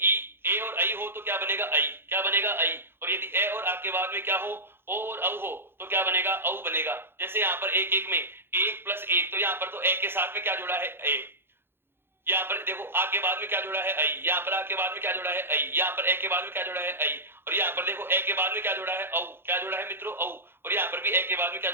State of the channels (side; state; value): left; late; 0.11 ms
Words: ए और आई हो तो क्या बनेगा? आई। क्या बनेगा? आई। और यदि ए और आ के बाद में क्या हो? ओ और औ हो तो क्या बनेगा? औ बनेगा। जैसे यहाँ पर एक एक में एक प्लस एक, तो यहाँ पर तो ए के साथ में क्या जुड़ा है? ए। यहाँ पर देखो आ के बाद में क्या जुड़ा है? आई। यहाँ पर आ के बाद में क्या जुड़ा है? आई। यहाँ पर ए के बाद में क्या जुड़ा है? आई। और यहाँ पर देखो ए के बाद में क्या जुड़ा है? औ। क्या जुड़ा है मित्रों? औ। और यहाँ पर भी ए के बाद में क्या